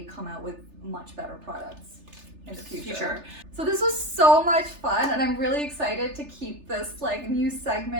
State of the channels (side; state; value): left; late; 3.3 ms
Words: come out with much better products in the future. So this was so much fun, and I'm really excited to keep this, like, new